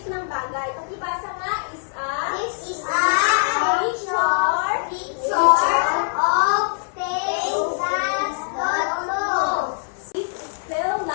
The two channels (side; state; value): right; silent; 64 dB below the other